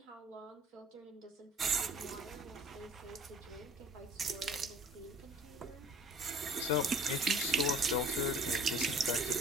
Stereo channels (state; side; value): normal; both; correlation 0.48